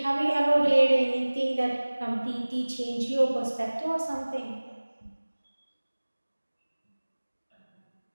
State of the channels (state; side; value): inverted; both; correlation -1.00